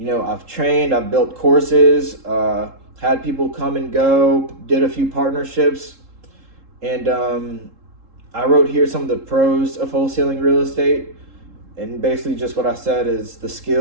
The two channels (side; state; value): left; late; 3.7 ms